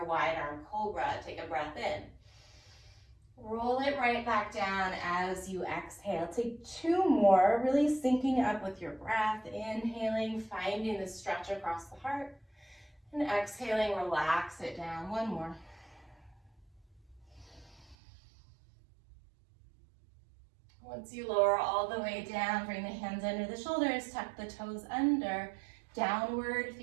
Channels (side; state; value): left; drops out; at 17.9 s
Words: wide arm cobra. Take a breath in. Roll it right back down as you exhale. Take two more, really syncing up with your breath. Inhaling, finding the stretch across the heart. And exhaling, relax it down. One more. Once you lower all the way down, bring the hands under the shoulders, tuck the toes under. Downward